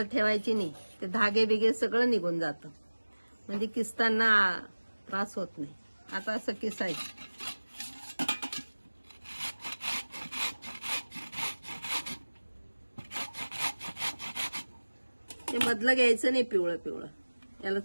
ठेवायची नाही, ते धागे बिगे सगळं निघून जातं, म्हणजे किसताना त्रास होत नाही। आता असं किसायचं, ते मधलं घ्यायचं नाही, पिवळं पिवळं, याला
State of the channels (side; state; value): both; inverted; correlation -1.00